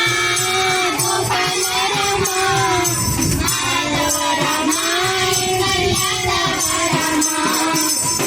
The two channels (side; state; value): both; identical; correlation 1.00